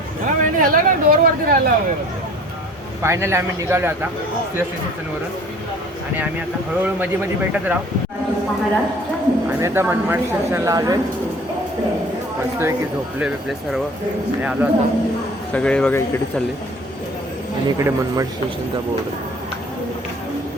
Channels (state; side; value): normal; both; correlation 0.49